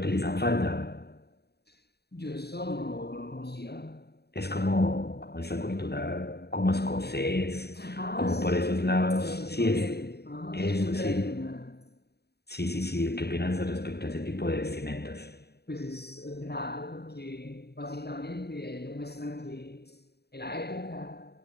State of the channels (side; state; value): right; late; 0.47 ms